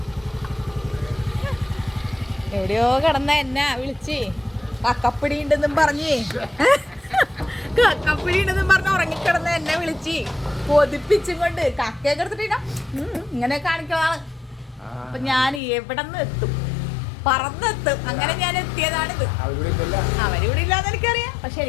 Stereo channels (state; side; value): drops out; right; at 15.6 s